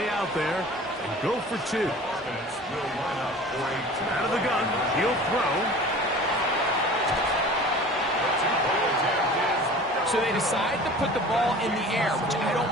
out there and go for 2. Out of the gun, he'll throw. So they decide to put the ball in the air, which I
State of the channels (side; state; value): both; normal; correlation 0.42